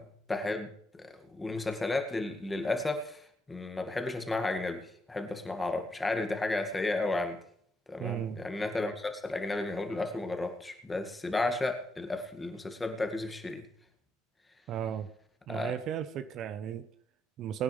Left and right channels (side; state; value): both; normal; correlation 0.79